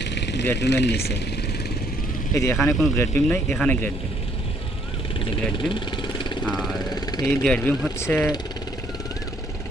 গ্রেড বিমের নিচে। এই যে এখানে কোনো গ্রেড বিম নেই, এখানে গ্রেড বিম, এই যে গ্রেড বিম। আর এই গ্রেড বিম হচ্ছে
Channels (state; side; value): normal; both; correlation 0.67